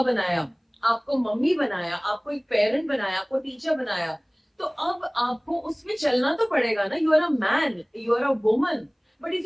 बनाया, आपको मम्मी बनाया, आपको एक पेरेंट बनाया, आपको टीचर बनाया, तो अब आपको उसमें चलना तो पड़ेगा ना. You are a man, you are a woman. But if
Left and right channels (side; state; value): both; identical; correlation 1.00